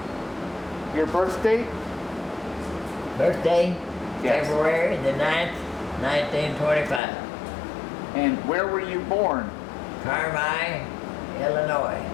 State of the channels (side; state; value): right; drops out; at 7.0 s